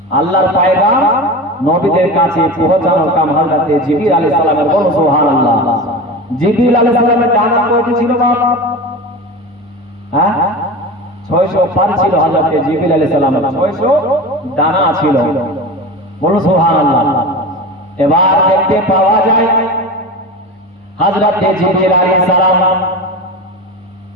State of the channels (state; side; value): normal; both; correlation 0.28